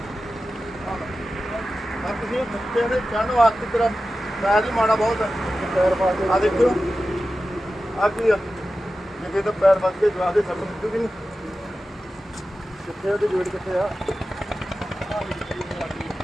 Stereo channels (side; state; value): both; normal; correlation 0.93